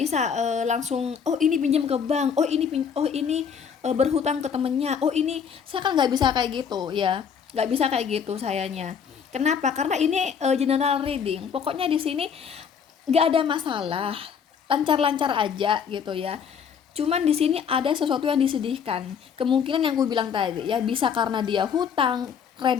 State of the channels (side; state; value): right; quieter; 7.1 dB